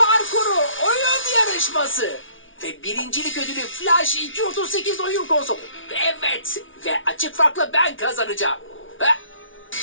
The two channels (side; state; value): right; late; 0.57 ms